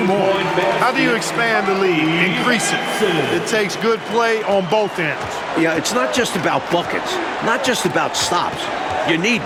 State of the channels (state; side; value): identical; both; correlation 1.00